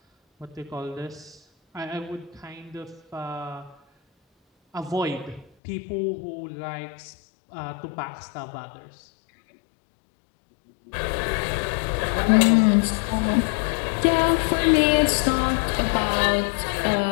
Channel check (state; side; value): drops out; right; at 5.5 s